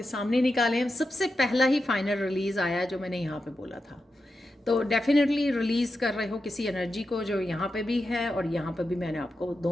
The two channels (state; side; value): normal; both; correlation 0.89